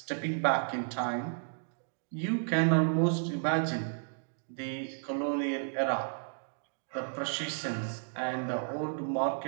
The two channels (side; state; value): left; silent; digital silence